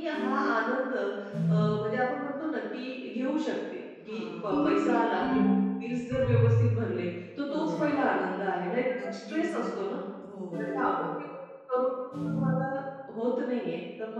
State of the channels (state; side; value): identical; both; correlation 1.00